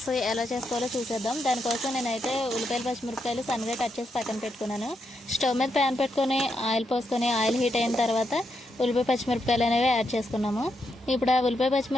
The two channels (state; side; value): normal; both; correlation 0.82